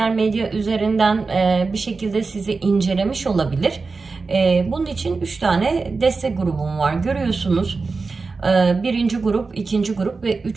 medya üzerinden bir şekilde sizi incelemiş olabilir. Bunun için 3 tane destek grubum var. Görüyorsunuz. Birinci grup, ikinci grup ve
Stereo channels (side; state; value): left; quieter; 4.2 dB